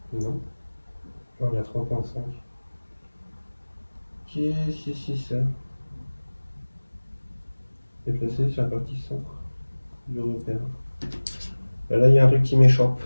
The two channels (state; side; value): inverted; both; correlation -1.00